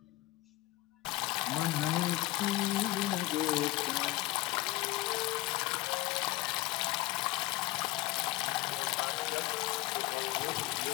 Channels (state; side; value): quieter; right; 17.9 dB